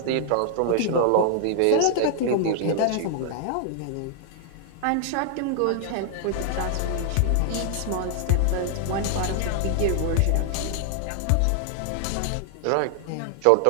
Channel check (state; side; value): different; both; correlation 0.00